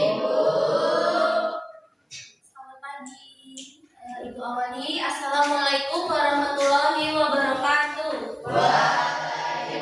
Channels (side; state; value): both; identical; correlation 1.00